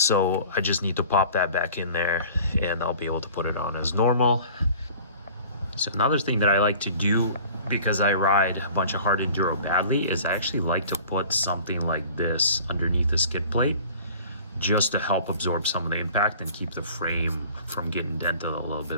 I just need to pop that back in there and I'll be able to put it on as normal. So another thing that I like to do, because I ride a bunch of hard enduro badly, is I actually like to put something like this underneath the skid plate just to help absorb some of the impact and keep the frame from getting dented a little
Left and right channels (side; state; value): both; inverted; correlation -0.46